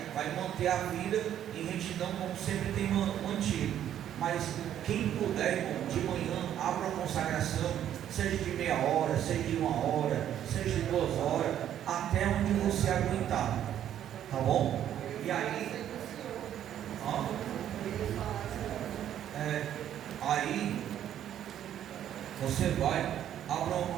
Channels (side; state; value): left; quieter; 10.7 dB